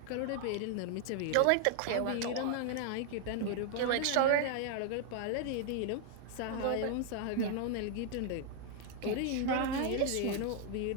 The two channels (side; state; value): both; different; correlation 0.00